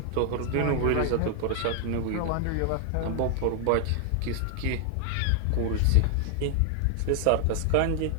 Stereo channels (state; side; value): different; both; correlation 0.00